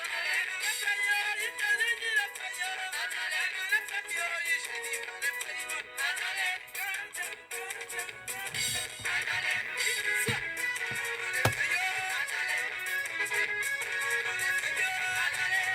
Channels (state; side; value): identical; both; correlation 1.00